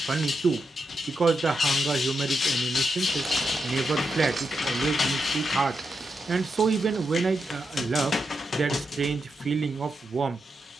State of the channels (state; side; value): normal; both; correlation 0.85